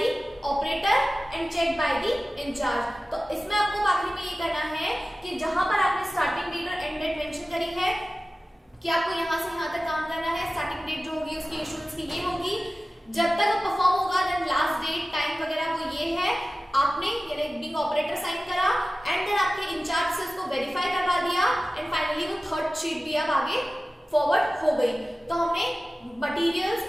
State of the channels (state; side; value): normal; both; correlation 0.96